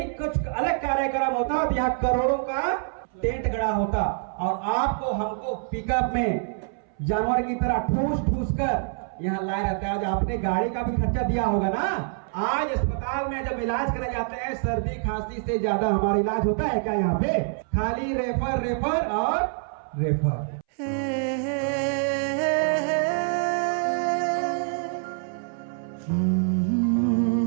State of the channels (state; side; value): silent; left; 61 dB below the other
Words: कुछ अलग कार्यक्रम होता तो यहाँ करोड़ों का टेंट गड़ा होता और आपको हमको पिकअप में जानवर की तरह ठूस ठूस कर यहाँ लाए रहते। आज आपने गाड़ी का भी खर्चा दिया होगा ना। आज अस्पताल में जब इलाज कराने जाते हैं, सर्दी खांसी से ज्यादा हमारा इलाज होता है क्या यहाँ पे? खाली रेफर रेफर और रेफर।